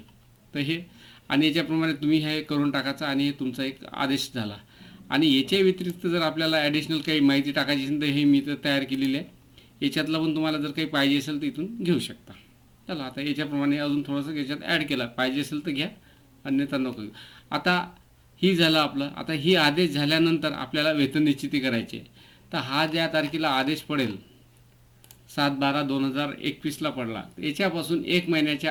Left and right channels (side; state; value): both; identical; correlation 1.00